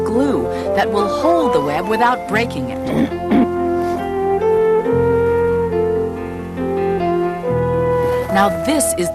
glue that will hold the web without breaking it. Now this is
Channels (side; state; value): both; identical; correlation 1.00